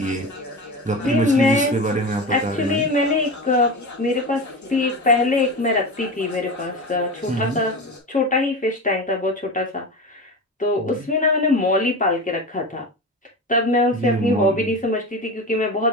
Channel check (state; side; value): normal; both; correlation 0.26